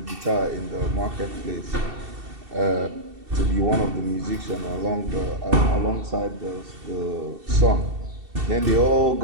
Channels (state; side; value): late; left; 2.7 ms